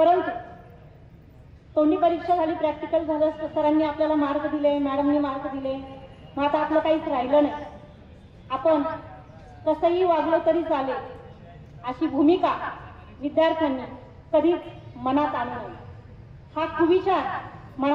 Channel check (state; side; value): identical; both; correlation 1.00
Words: तोंडी परीक्षा झाली, प्रॅक्टिकल झालं, सरांनी आपल्याला मार्क दिले, मॅडमनी मार्क दिले, मग आता आपलं काहीच राहिलं नाही. आपण कसंही वागलं तरी चालेल अशी भूमिका विद्यार्थ्यांनी कधीच मनात आणू नये, हा कुविचार